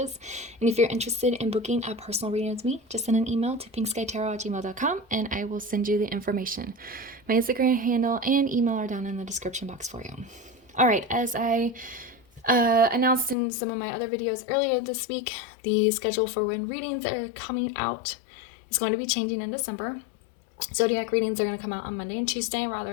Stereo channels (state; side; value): drops out; right; at 13.4 s